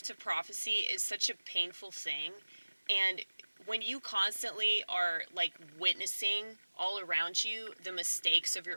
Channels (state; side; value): inverted; both; correlation -1.00